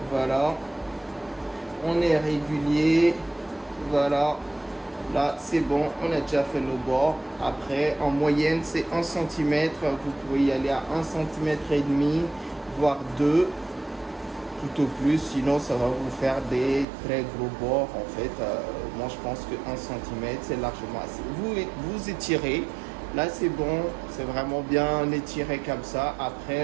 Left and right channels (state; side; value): drops out; left; at 16.9 s